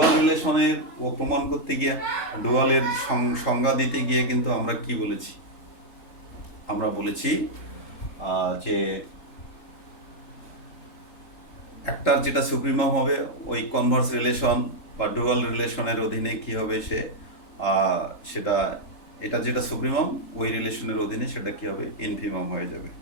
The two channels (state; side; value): late; right; 3.8 ms